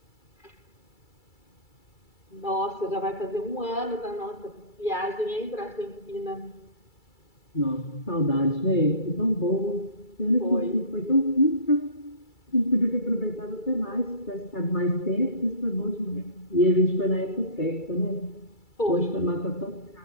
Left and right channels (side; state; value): right; late; 2.3 ms